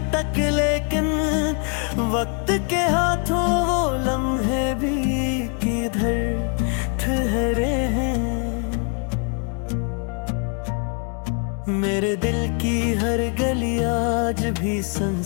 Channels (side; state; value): right; quieter; 38.9 dB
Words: तक लेकिन वक्त के हाथों वो लम्हे भी किधर ठहरे हैं। मेरे दिल की हर गली आज भी